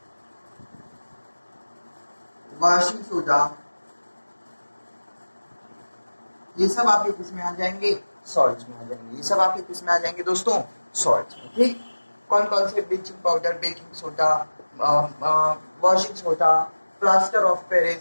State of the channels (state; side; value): inverted; both; correlation -1.00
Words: वॉशिंग सोडा, ये सब आपके किस में आ जाएंगे, सॉल्ट्स में आ जाएंगे। ये सब आपके किस में आ जाएंगे दोस्तों, सॉल्ट्स में। ठीक। कौन कौन से, bleaching powder, baking soda, washing soda, plaster of